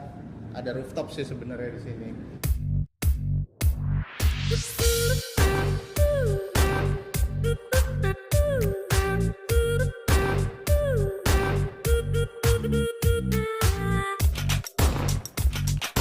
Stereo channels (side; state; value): both; identical; correlation 1.00